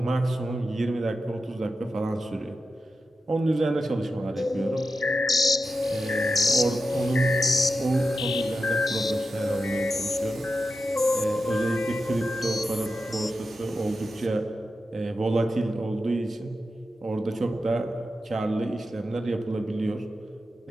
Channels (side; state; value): both; normal; correlation 0.91